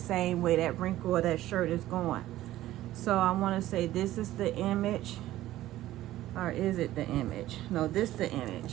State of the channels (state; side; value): quieter; left; 14.8 dB